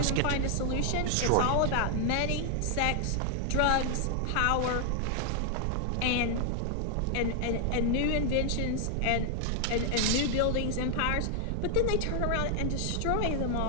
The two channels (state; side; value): different; both; correlation 0.00